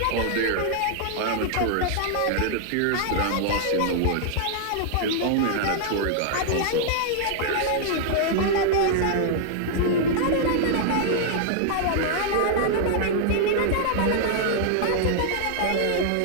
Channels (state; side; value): different; both; correlation -0.01